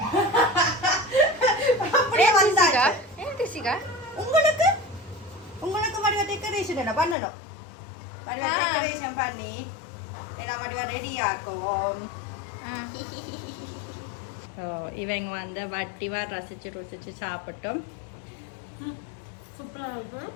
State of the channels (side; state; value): right; drops out; at 7.2 s